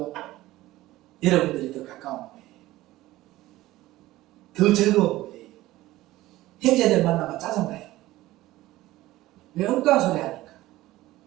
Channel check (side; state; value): left; quieter; 16.9 dB